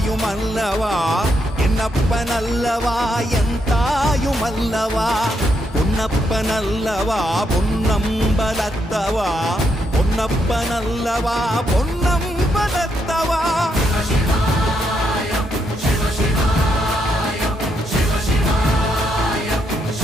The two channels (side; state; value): both; normal; correlation 0.78